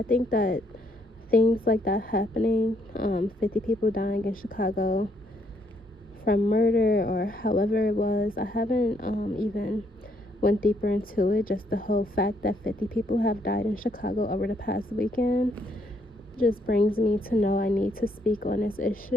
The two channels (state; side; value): normal; both; correlation 0.71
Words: think that things like that happening, 50 people dying in Chicago, from murder or however it was. I haven't even went deeper into it. Just the whole fact that 50 people have died in Chicago over the past weekend just brings me to know I need to speak on this